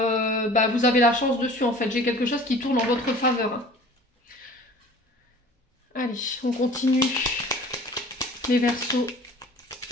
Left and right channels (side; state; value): both; normal; correlation 0.46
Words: bah, vous avez la chance dessus, en fait. J'ai quelque chose qui tourne en votre faveur, hein. Allez, on continue. Les Verseaux.